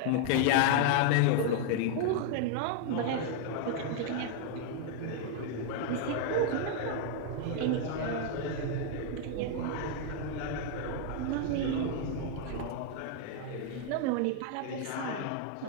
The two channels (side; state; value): both; different; correlation 0.00